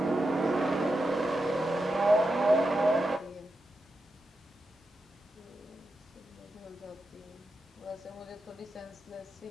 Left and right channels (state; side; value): normal; both; correlation 0.88